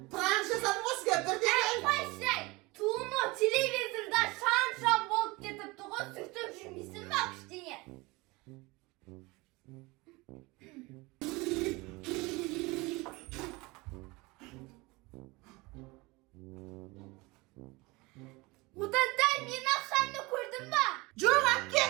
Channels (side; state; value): left; quieter; 23.7 dB